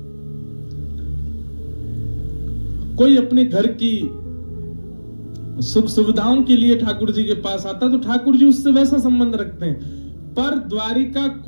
कोई अपने घर की सुख सुविधाओं के लिए ठाकुर जी के पास आता तो ठाकुर जी उससे वैसा संबंध रखते हैं। पर द्वारिका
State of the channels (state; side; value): inverted; both; correlation -1.00